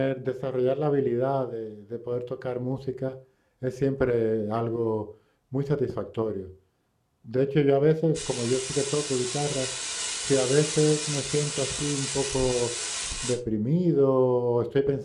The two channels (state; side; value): identical; both; correlation 1.00